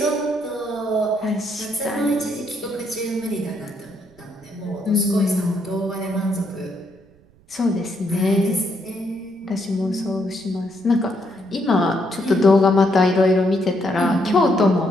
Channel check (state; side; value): noise; right; rumble, 29 dB below the sound